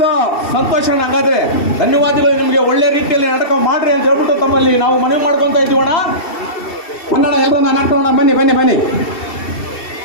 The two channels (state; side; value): late; right; 2.7 ms